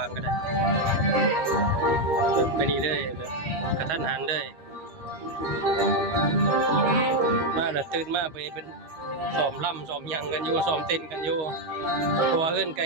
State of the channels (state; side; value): late; left; 13 ms